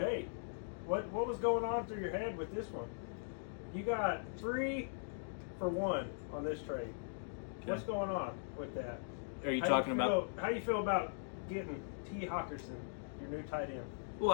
What was going on through your head with this one? You got 3 for 1 on this trade. Okay. What's going on with that? Are you talking about? How you feel about getting T. Hawkinson, your new tight end?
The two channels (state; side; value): silent; right; digital silence